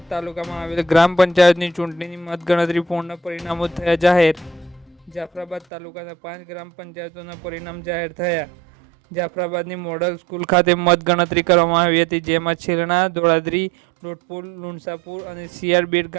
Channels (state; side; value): drops out; left; at 5.7 s